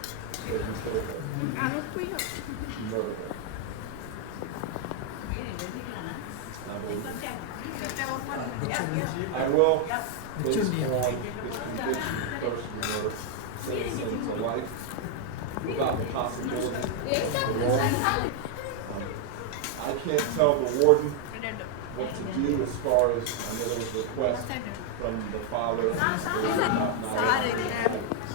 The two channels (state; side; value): different; both; correlation 0.00